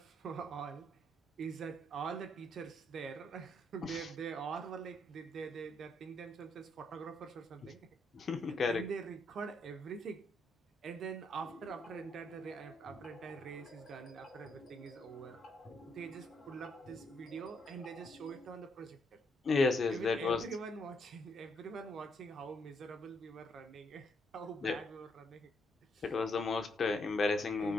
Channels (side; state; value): both; normal; correlation 0.75